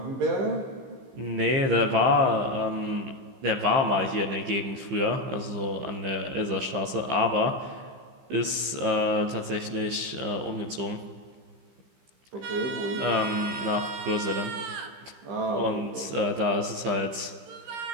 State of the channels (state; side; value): late; left; 15 ms